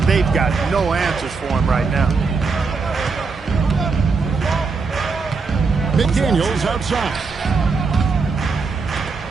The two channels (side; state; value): left; quieter; 4.6 dB